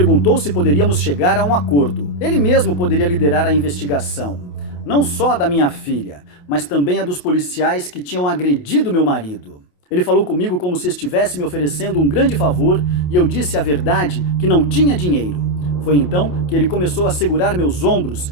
se poderíamos chegar a um acordo. Ele mesmo poderia liderar a investigação. Não só da minha filha, mas também a dos policiais que tinham agredido meu marido. Ele falou comigo como se estivesse me oferecendo um grande favor e eu disse a verdade que não tinha dinheiro. Foi então que ele começou a segurar meus ombros,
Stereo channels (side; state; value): right; late; 28 ms